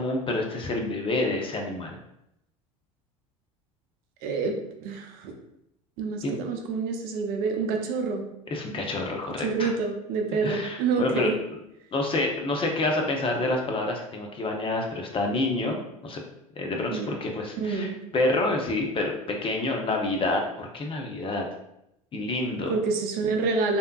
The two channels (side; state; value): both; normal; correlation 0.35